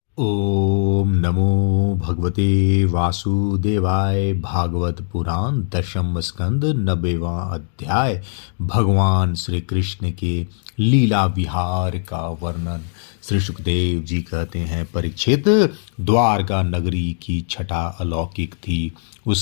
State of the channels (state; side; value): silent; right; digital silence